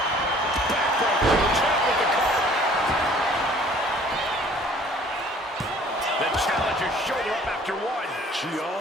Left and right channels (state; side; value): normal; both; correlation 0.54